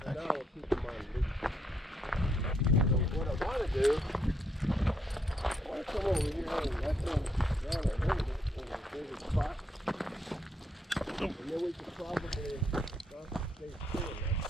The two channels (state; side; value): normal; both; correlation 0.75